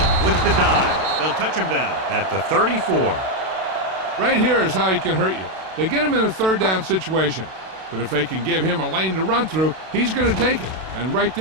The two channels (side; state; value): left; late; 32 ms